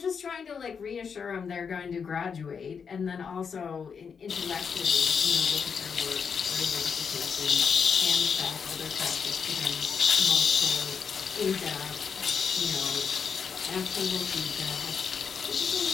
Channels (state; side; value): quieter; right; 6.3 dB